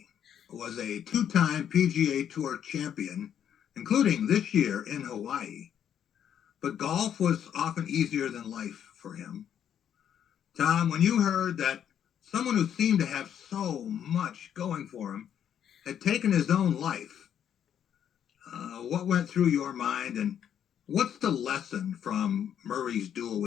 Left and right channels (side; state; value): right; quieter; 9.3 dB